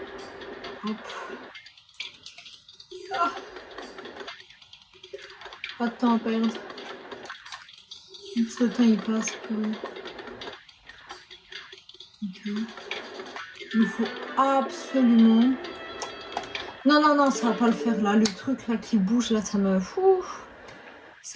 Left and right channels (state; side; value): identical; both; correlation 1.00